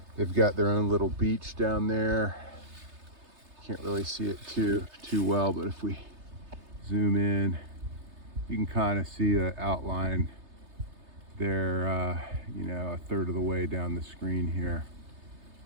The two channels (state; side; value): late; left; 3.3 ms